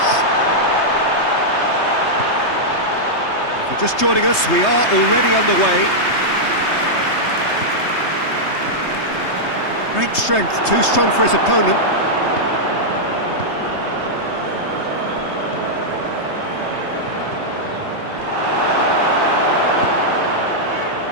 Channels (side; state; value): right; late; 3.3 ms